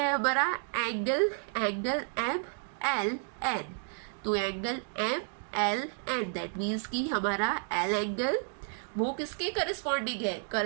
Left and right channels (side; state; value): left; silent; 57 dB below the other